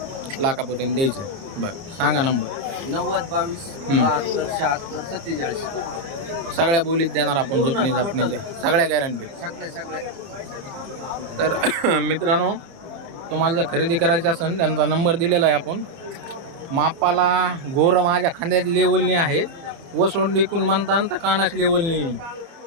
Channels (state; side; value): late; left; 30 ms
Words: लाखापर्यंत द्यायचं. बरं सांगा नंबर. 90 22 72 76 47. सगळ्या बोलीत देणार आपण. झुकणी झापणीच्या सगळ्या गॅरंटी. सगळे तर मित्रांनो तुम्हाला जर खरेदी करायची असेल त्यांचा नंबर दिलेला आहे आपण. मापाला गोर माझ्या खांद्यात लेवलनी आहे. वसोंड इकून म्हणता तर कानाच लेवलनी